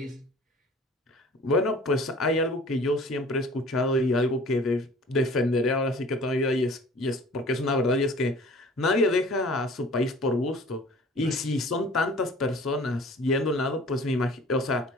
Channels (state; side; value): normal; both; correlation 0.48